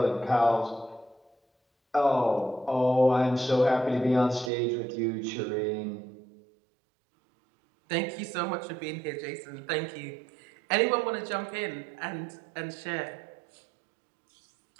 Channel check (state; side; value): drops out; left; at 4.5 s